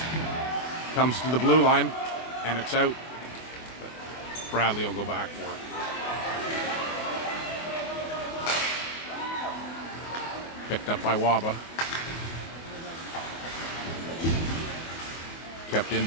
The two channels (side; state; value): right; late; 24 ms